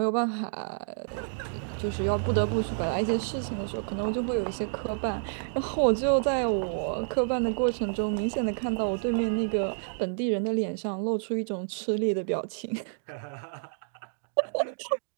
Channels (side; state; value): left; silent; digital silence